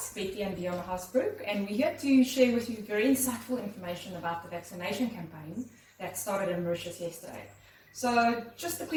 Betty and Dion Hasbrook, and we're here to share with you very insightful information about the vaccination campaign that started in Mauritius yesterday. So, just a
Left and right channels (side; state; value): both; identical; correlation 1.00